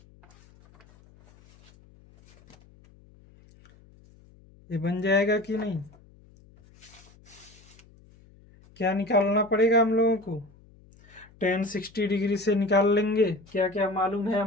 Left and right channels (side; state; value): left; noise; hum, 27 dB below the sound